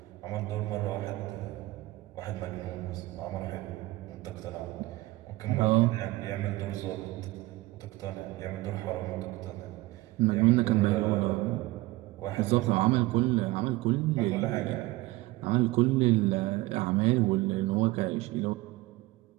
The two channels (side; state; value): left; quieter; 19.6 dB